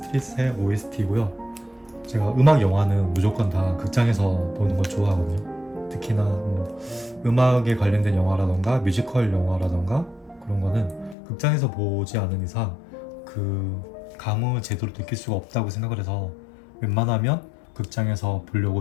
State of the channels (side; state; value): right; drops out; at 11.2 s